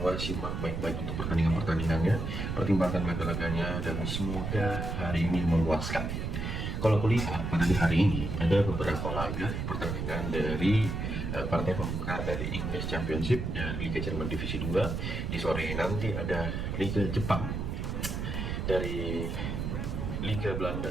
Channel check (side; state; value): right; noise; rumble, 3 dB below the sound